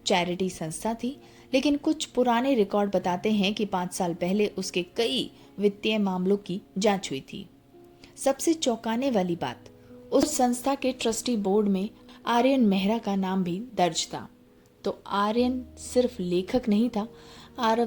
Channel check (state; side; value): identical; both; correlation 1.00